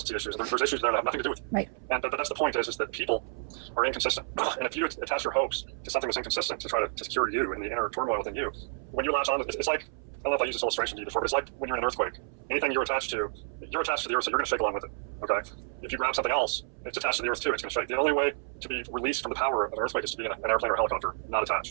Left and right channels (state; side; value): silent; left; 58 dB below the other